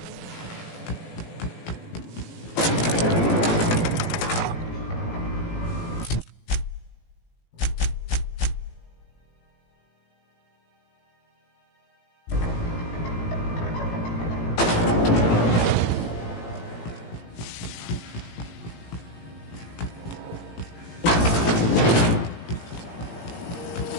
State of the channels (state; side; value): late; right; 18 ms